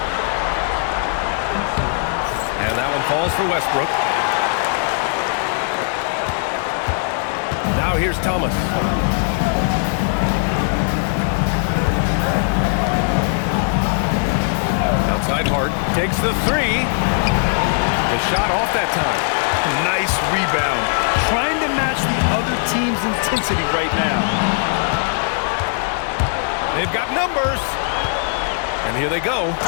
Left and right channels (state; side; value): silent; right; 63 dB below the other